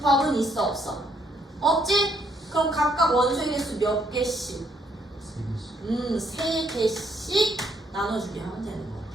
있어 없어? 없지? 그럼 각각 원소의 개수 몇 개씩? 3개씩 나눠주게 하면 되는 거야.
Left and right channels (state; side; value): normal; both; correlation 0.71